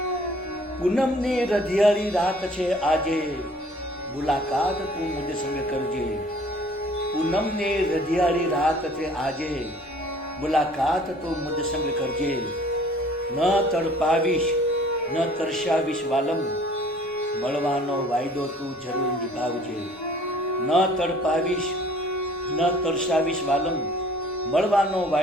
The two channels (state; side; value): normal; both; correlation 0.53